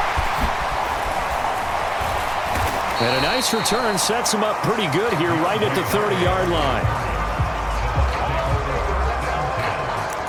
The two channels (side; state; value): both; identical; correlation 1.00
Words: And a nice return sets him up pretty good here right at the 30-yard line.